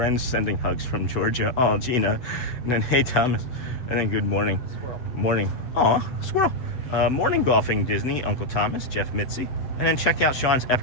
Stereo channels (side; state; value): right; late; 7.9 ms